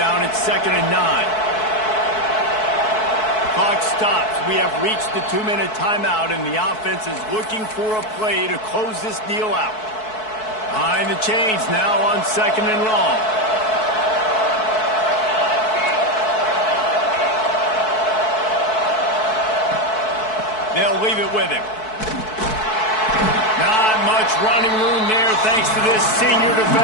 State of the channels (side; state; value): right; late; 4.6 ms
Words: It's 2nd and 9. Clock stops. We have reached the 2-minute timeout, and the offense is looking for a play to close this deal out. Behind the chains now on 2nd and long. They'll leave it with him. Not much running room there thanks to this senior